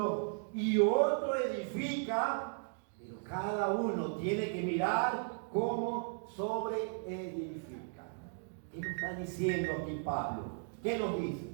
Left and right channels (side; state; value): left; silent; digital silence